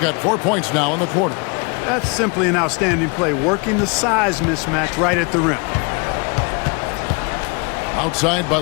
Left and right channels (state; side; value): quieter; right; 31.9 dB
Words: 4 points now in the quarter. That's simply an outstanding play, working the size mismatch right at the rim. Outside